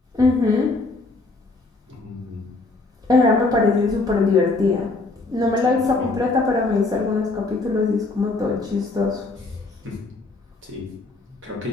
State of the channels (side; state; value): right; quieter; 3.4 dB